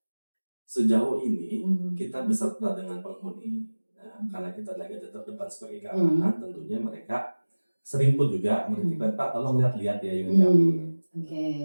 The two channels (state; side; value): inverted; both; correlation -1.00